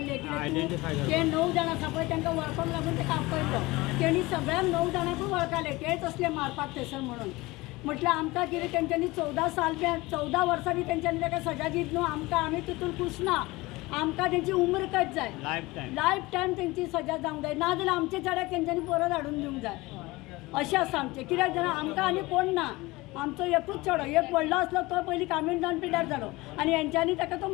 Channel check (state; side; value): quieter; right; 21.4 dB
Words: Identify ते 9 जाण आसा पळय तांकां वळखूंक लागून ताका आपयलो तेणी सगळ्यांक 9 जाणांकूय वळखले तेच असले मारपाक थंयसर म्हणून म्हटल्यार आमकां कितें तेंच्यांनी 14 वर्सां बी तेंच्यांनी ताका सजा दीत न्हू आमकां आमी तितून खुश ना आमकां तेंची उम्र कट जाय लायफ टायम तेंची सजा जावंक जाय नाजाल्यार आमचे चेड्याक तेंच्यांनी परत हाडून दिवंक जाय अशें आसा आमचें कित्याक जाणां आमकां आनी कोण ना आमचो एकूच चेडो एक व्हडलो आसलो तो पयलीं कामीण जावन पिड्यार जालो आनी हेंच्यांनी ताका तो